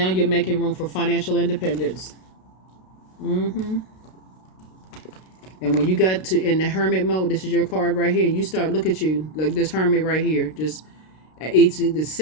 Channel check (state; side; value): late; right; 32 ms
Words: you're making room for financial independence. And when you got to in the Hermit mode, this is your card right here. And you start, look at you, like this Hermit right here. Just it's either